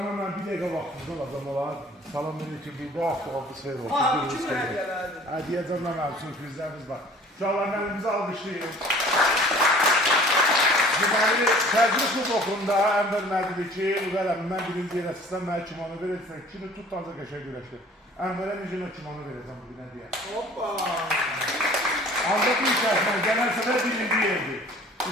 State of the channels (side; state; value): both; normal; correlation 0.50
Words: ben bir dəqiqə vaxtınızda alacam olar. Salam aleyküm, bu hafta oldu seyir olsun. Kim hədiyələrdir? Hədiyyə canına mənim sürprizlərimiz var. Uşaqlar mənimizi alqışlayın. Deməli, Təzri Kubokunda Ənvər Mədili ki, Uqələmindən birinci yerə sizdən mənə kimono verəcəksən. Kini tut da qəşəng güləşdir. Ənvərə necə kimono verəcəm bugünə deyə. Hoppa! Ancaq bir şərtlə, gələn səfər birinci yerdir.